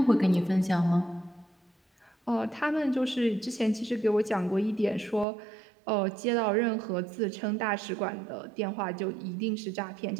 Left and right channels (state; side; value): drops out; left; at 5.2 s